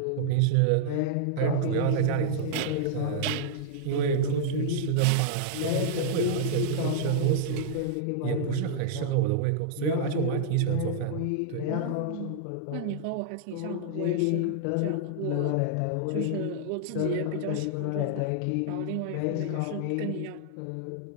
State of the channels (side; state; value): both; different; correlation -0.01